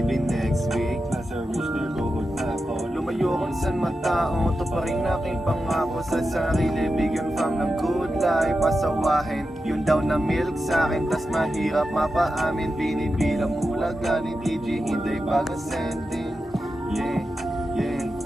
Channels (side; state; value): both; normal; correlation 0.90